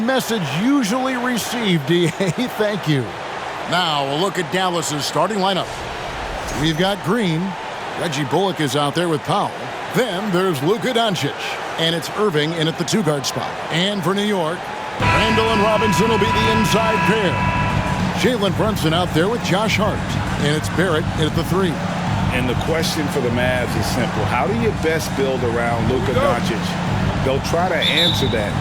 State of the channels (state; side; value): identical; both; correlation 1.00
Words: message usually received, DA. Thank you. Now, a look at Dallas's starting lineup. We've got Green. Reggie Bullock is out there with Powell. Then there's Luka Doncic. And it's Irving in at the two-guard spot. And for New York, Randall and Robinson will be the inside pair. Jalen Brunson out there with Josh Hart. And it's Barrett in at the three. And the question for the Mavs is simple. How do you best build around Luka Doncic? They'll try to answer that